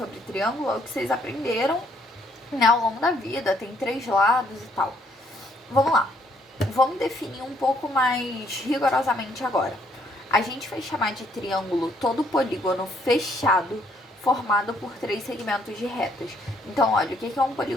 triângulo é o que vocês aprenderam, né, ao longo da vida, tem 3 lados e tal. Vamos lá, vamos definir um pouco mais rigorosamente agora. A gente vai chamar de triângulo todo polígono fechado formado por 3 segmentos de retas. Então, olha, o que é um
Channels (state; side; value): normal; both; correlation 0.68